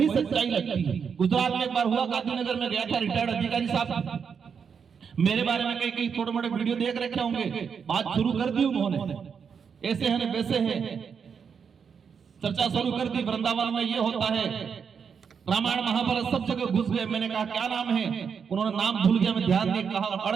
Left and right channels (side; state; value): left; quieter; 6.6 dB